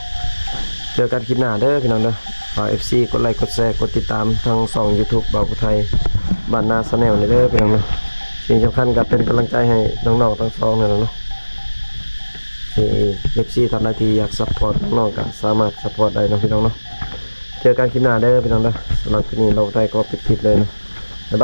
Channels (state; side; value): inverted; both; correlation -1.00